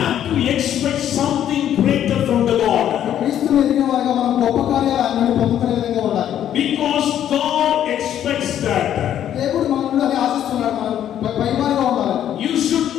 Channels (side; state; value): right; quieter; 10.6 dB